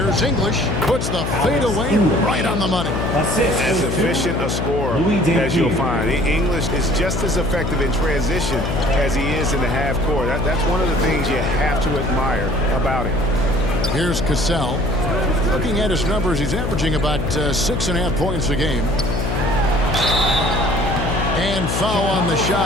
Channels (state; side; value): noise; left; hum, 1 dB below the sound